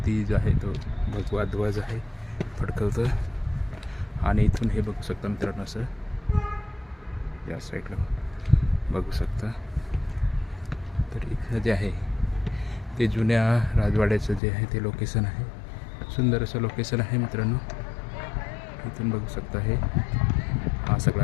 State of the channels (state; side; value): drops out; right; at 14.4 s